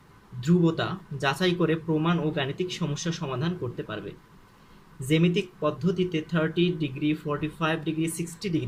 ধ্রুবতা যাচাই করে প্রমাণ ও গাণিতিক সমস্যা সমাধান করতে পারবে। জ্যামিতিক পদ্ধতিতে 30 ডিগ্রি, 45 ডিগ্রি, 60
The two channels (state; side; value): identical; both; correlation 1.00